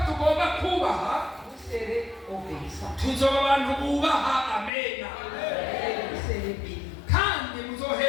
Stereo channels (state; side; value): drops out; right; at 4.7 s